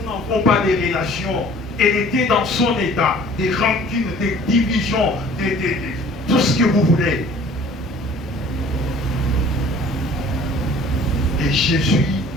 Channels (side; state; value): both; normal; correlation 0.51